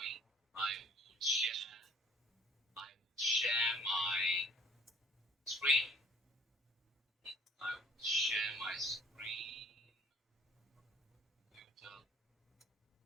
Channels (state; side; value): normal; both; correlation 0.53